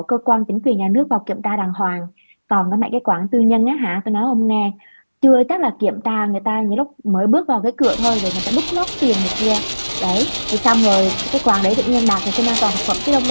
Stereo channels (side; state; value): both; inverted; correlation -1.00